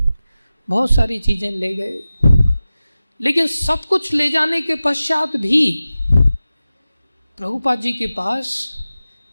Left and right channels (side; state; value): both; inverted; correlation -0.95